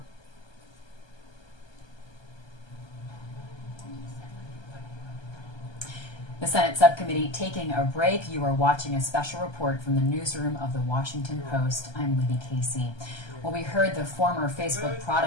The Senate subcommittee taking a break. You are watching a special report from the newsroom of the Washington Post. I'm Libby Casey. Well, we heard the former Facebook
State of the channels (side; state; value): right; late; 1.2 ms